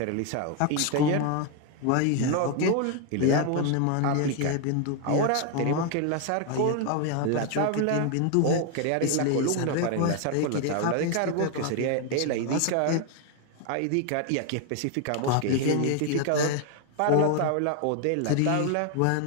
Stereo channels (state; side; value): different; both; correlation 0.01